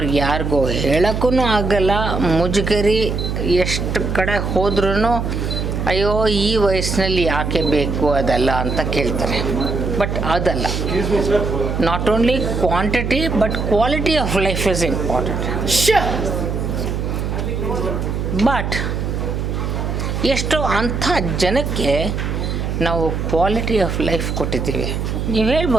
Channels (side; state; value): right; noise; hum, 2 dB below the sound